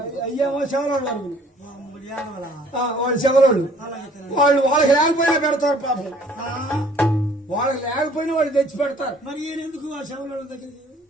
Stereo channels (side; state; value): both; normal; correlation 0.57